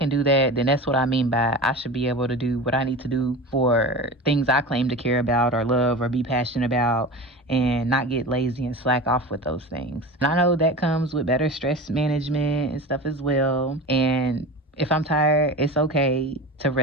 do that, then that's what I mean by I should be able to do what I need to do for things I claim to care about or love or be passionate about, and not get lazy and slack off with those things. And I know that comes with better stress management and stuff as well. And if I'm tired, it's okay to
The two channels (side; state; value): both; normal; correlation 0.31